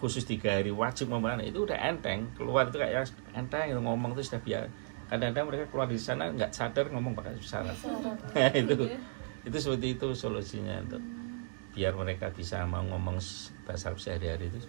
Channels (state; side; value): silent; left; digital silence